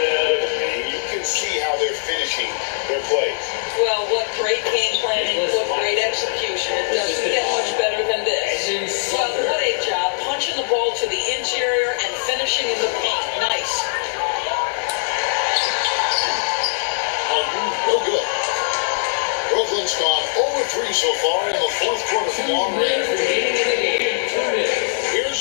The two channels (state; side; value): silent; right; digital silence